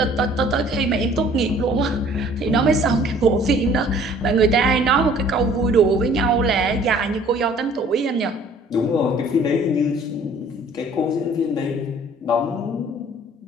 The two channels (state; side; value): normal; both; correlation 0.54